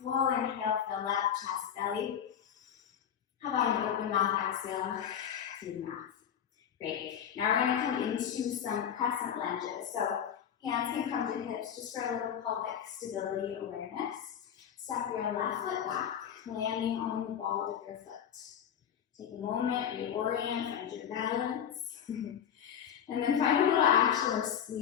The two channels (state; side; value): quieter; right; 8.8 dB